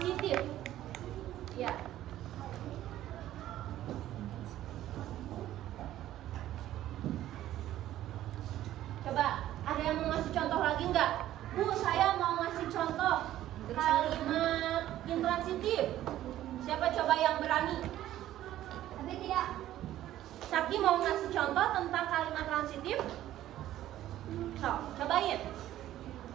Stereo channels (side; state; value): left; quieter; 13.3 dB